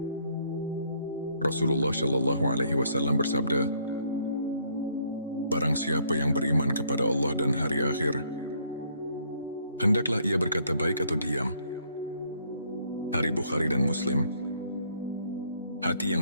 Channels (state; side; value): inverted; both; correlation -0.67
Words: Rasulullah Shallallahu Alaihi Wasallam bersabda, "Barang siapa yang beriman kepada Allah dan hari akhir, hendaklah ia berkata baik atau diam." Hari Bukhari dan Muslim. Hati